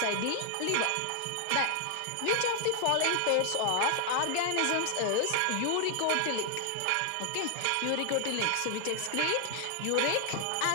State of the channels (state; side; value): different; both; correlation 0.00